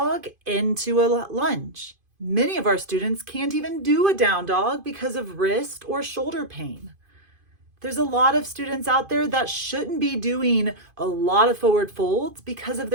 into a lunge. Many of our students can't even do a down dog because of wrist or shoulder pain. There's a lot of students out there that shouldn't be doing a lot of forward folds because of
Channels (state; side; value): late; left; 2.5 ms